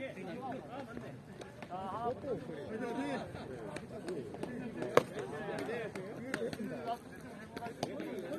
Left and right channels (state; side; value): identical; both; correlation 1.00